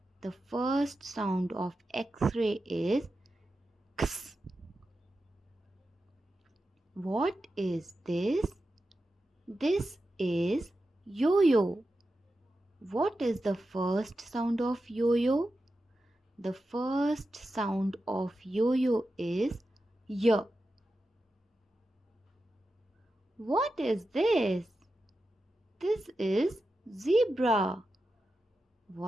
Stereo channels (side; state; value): both; normal; correlation 0.91